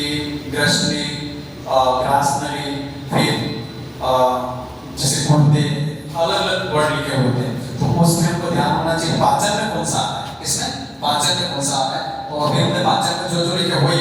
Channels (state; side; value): identical; both; correlation 1.00